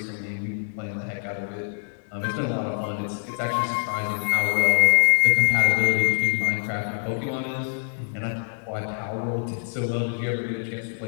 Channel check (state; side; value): silent; right; digital silence